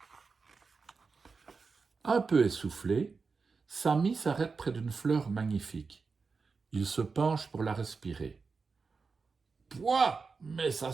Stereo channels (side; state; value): left; quieter; 4.7 dB